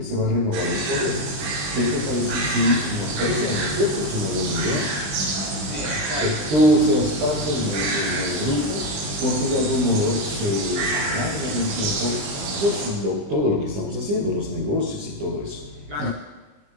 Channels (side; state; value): left; late; 21 ms